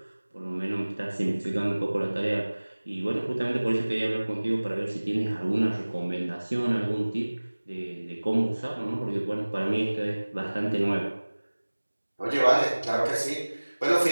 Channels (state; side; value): inverted; both; correlation -1.00